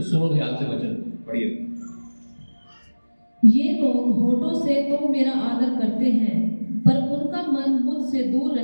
सुनो ध्यान से वचन, पढ़िए। ये लोग होठों से तो मेरा आदर करते हैं, पर उनका मन मुझसे दूर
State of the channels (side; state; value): both; inverted; correlation -1.00